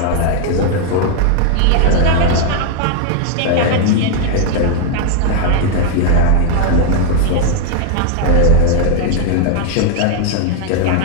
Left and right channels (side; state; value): both; different; correlation 0.00